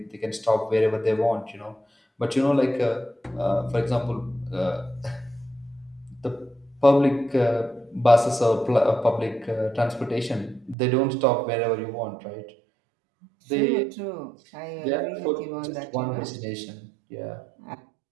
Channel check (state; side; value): drops out; left; at 10.8 s